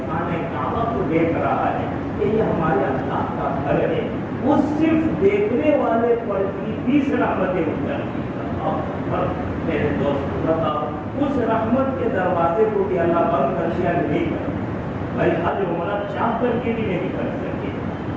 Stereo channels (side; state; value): both; identical; correlation 1.00